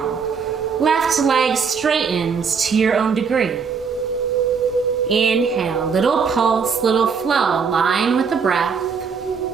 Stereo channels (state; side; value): quieter; left; 5.9 dB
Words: left leg straightens to your own degree. Inhale, little pulse, little flow, align with the breath.